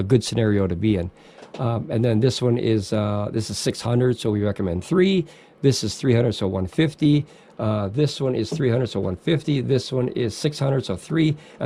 good scenario to be in. And then this one is this is 600, so we recommend 3. This is 300, so 150. This one is 300, so 150. This one is 600, so 3.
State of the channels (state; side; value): identical; both; correlation 1.00